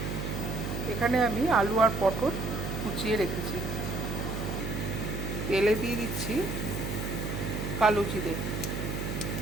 এখানে আমি আলু আর পটল কুচিয়ে রেখেছি। তেলে দিয়ে দিচ্ছি কালো জিরে।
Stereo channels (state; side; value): noise; right; hum, 4 dB below the sound